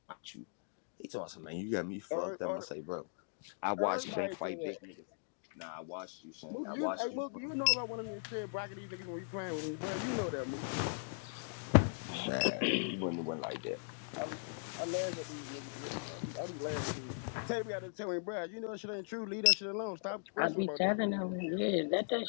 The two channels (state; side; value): silent; right; digital silence